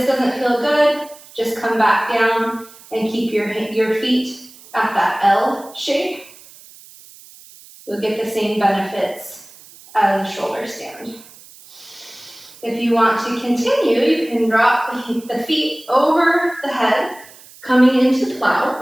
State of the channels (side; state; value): right; noise; hiss, 22 dB below the sound